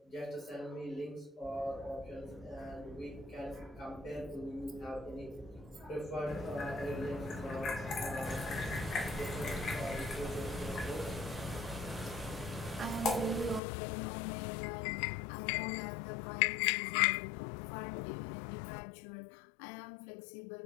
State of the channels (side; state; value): right; drops out; at 13.6 s